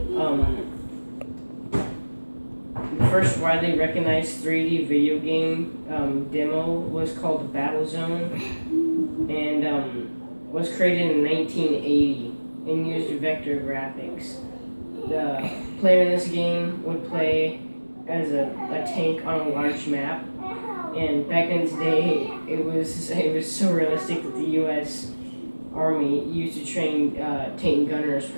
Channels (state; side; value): inverted; both; correlation -1.00